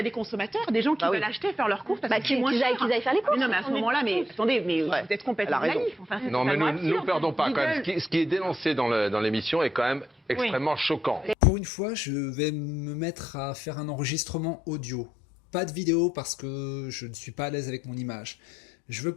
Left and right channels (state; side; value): drops out; right; at 11.4 s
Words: a des consommateurs, des gens qui veulent acheter, faire leurs courses parce que c'est moins cher. Qu'ils aillent faire les courses. Non, mais à ce moment-là, attendez, vous êtes complètement naïf. Non, mais nous ne perdons pas quand même. Ce qui est dénoncé dans l'émission est quand même extrêmement choquant. Pour une fois, je vais me mettre à faire un enregistrement audio. Pas de vidéo parce que je ne suis pas à l'aise avec mon image. Je veux